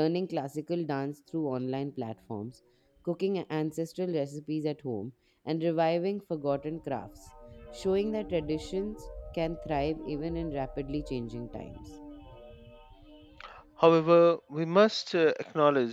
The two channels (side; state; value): both; identical; correlation 1.00